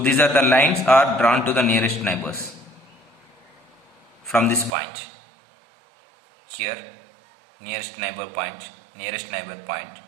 are the lines are drawn to the nearest neighbors from this point. Here, nearest neighbor point, nearest neighbor point,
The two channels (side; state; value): left; drops out; at 4.7 s